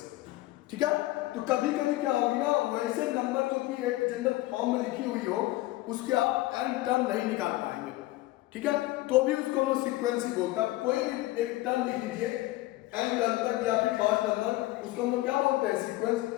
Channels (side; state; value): right; quieter; 17.9 dB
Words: ठीक है, तो कभी कभी क्या होगी ना, वैसे नंबर जो कि एक जनरल फॉर्म में लिखी हुई हो उसके आप n टर्म नहीं निकाल पाएंगे। ठीक है, तो भी उसको हम लोग सीक्वेंस ही बोलते हैं। कोई भी एक टर्म लिख लीजिए n टर्म तक या फिर 5 नंबर, उसको हम लोग क्या बोलते हैं, सीक्वेंस।